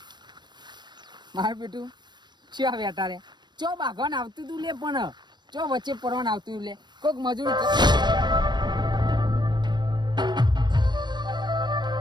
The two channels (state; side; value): late; left; 0.21 ms